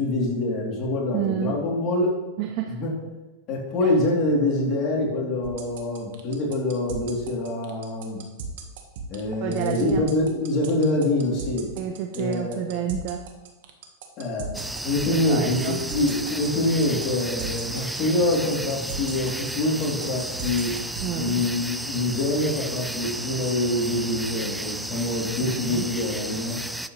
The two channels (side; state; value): both; normal; correlation -0.04